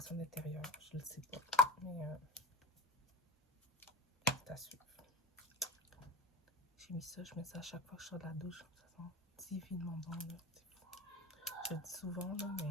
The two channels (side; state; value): both; normal; correlation 0.33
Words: d'intérieur. Je ne le sais pas, mais c'est à suivre. J'ai mis ça, je mets ça à chaque fois que je sors de la douche. Ça sent divinement bon, là. Je le dis souvent, là,